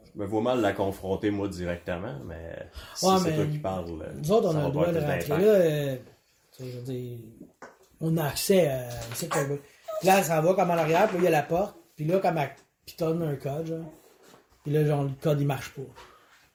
Je me vois mal la confronter, moi, directement, mais si Ouais, c'est mais toi qui parles, nous autres, on ça a va le droit pas de être rentrer d'impact. là. Tu sais, je veux dire, on a accès à. Puis là, elle s'en va comme en arrière, puis là, il y a la porte. Puis là, comme elle pitonne un code, genre. Puis là, genre, le code, il marche pas.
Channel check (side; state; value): both; identical; correlation 1.00